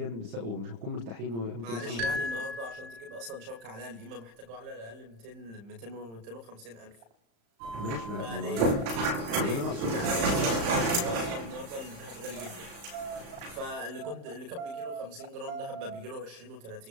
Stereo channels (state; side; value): late; left; 35 ms